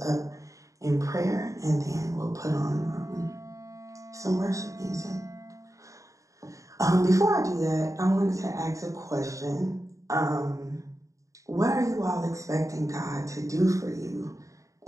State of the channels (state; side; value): late; left; 0.16 ms